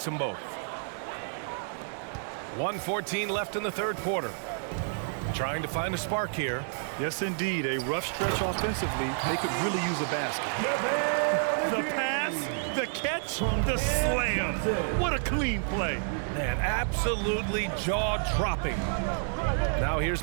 them both. 1:14 left in the third quarter. Trying to find a spark here. Yes, indeed. A rough stretch offensively. They could really use a basket. The pass, the catch, the slam. What a clean play. Man, absolutely jaw-dropping. Now here's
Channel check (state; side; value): silent; left; digital silence